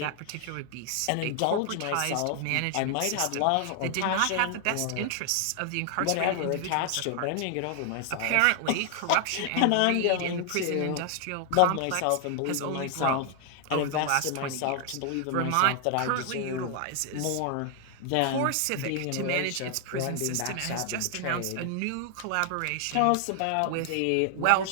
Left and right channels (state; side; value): different; both; correlation 0.00